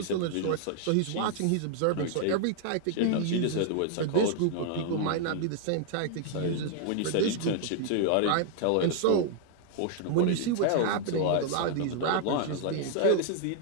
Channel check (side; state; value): both; different; correlation 0.00